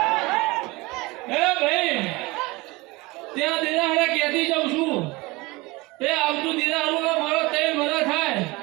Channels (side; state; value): left; quieter; 23.1 dB